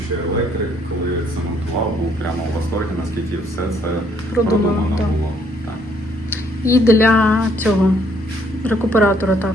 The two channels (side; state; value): both; normal; correlation 0.67